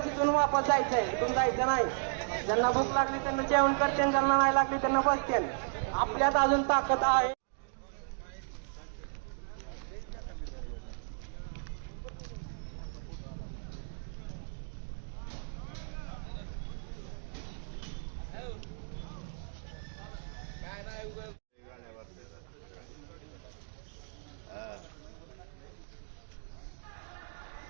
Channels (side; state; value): left; silent; digital silence